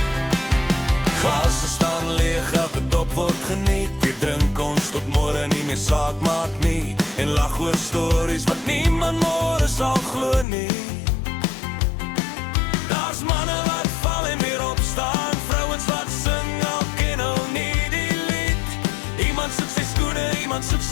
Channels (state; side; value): drops out; right; at 10.5 s